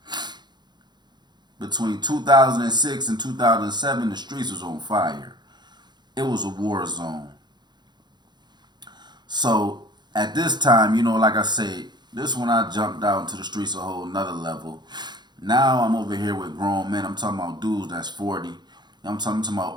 between 2006 and 2007, the streets was on fire. It was a war zone. So at this time, like I said, this when I jumped out into the streets a whole nother level. Now I'm over here with grown men. I'm talking about dudes that's 40. I'm talking about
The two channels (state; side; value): late; left; 0.21 ms